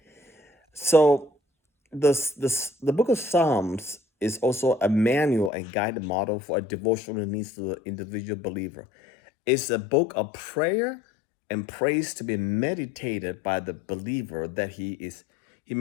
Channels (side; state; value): right; drops out; at 5.5 s